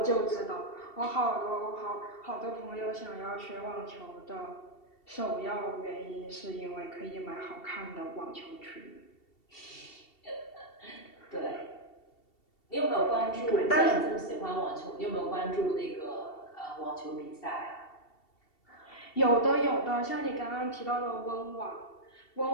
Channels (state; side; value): late; right; 2.7 ms